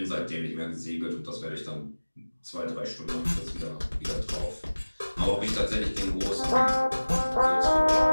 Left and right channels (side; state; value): both; inverted; correlation -1.00